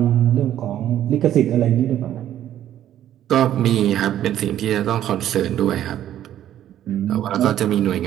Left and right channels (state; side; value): quieter; left; 11.6 dB